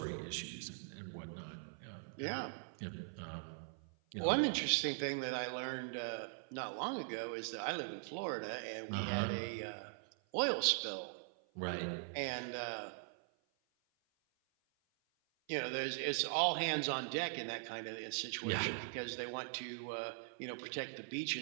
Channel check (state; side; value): silent; left; 50 dB below the other